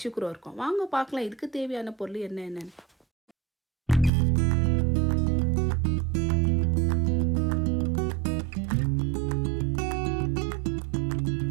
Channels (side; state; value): left; drops out; at 4.1 s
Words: கூட இருக்கும். வாங்க பார்க்கலாம் இதுக்கு தேவையான பொருள் என்னென்னு.